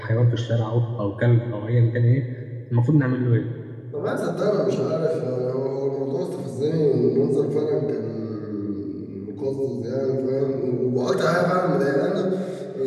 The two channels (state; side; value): identical; both; correlation 1.00